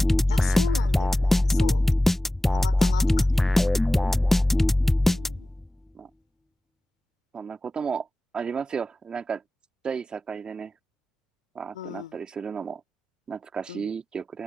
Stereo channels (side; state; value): both; normal; correlation 0.96